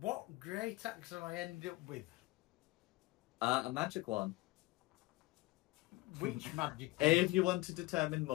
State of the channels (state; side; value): quieter; right; 20.2 dB